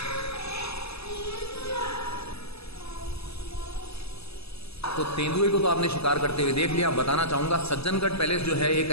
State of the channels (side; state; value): right; late; 0.79 ms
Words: तो तेंदुए को तो आपने शिकार करते हुए देख लिया। बताना चाहूँगा सज्जनगढ़ पैलेस जो है एक